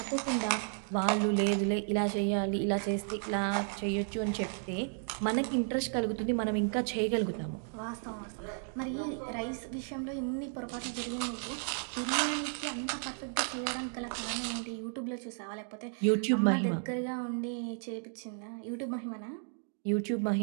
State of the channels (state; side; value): silent; left; 55 dB below the other